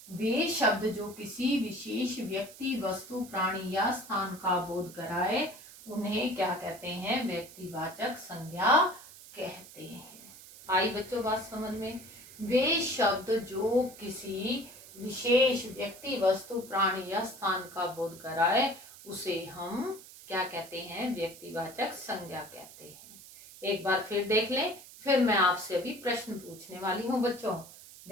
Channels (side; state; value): right; noise; hiss, 18 dB below the sound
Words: वे शब्द जो किसी विशेष व्यक्ति, वस्तु, प्राणी या स्थान का बोध कराए, उन्हें क्या कहते हैं? व्यक्तिवाचक संज्ञा कहते हैं। आई बच्चों बात समझ में? वे शब्द जो किसी विशेष व्यक्ति, वस्तु, प्राणी या स्थान का बोध कराए, उसे हम क्या कहते हैं? व्यक्तिवाचक संज्ञा कहते हैं। एक बार फिर देख लें, फिर मैं आपसे अभी प्रश्न पूछने वाली हूँ बच्चों।